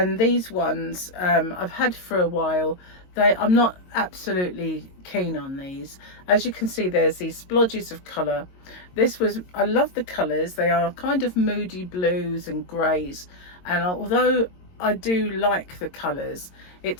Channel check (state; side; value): late; right; 22 ms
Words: these ones I've had for a while. I'm not absolutely keen on these. As you can see, there's these splodges of colour. I love the colours. They are kind of moody blues and greys, and although I do like the colours,